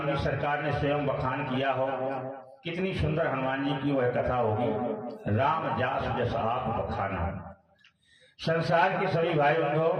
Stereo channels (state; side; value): identical; both; correlation 1.00